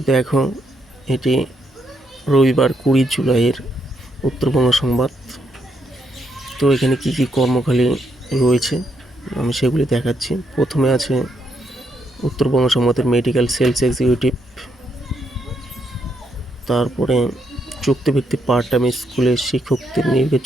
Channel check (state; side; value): normal; both; correlation 0.77